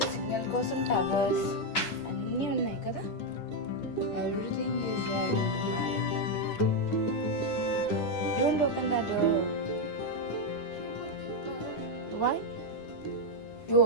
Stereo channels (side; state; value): right; late; 9.9 ms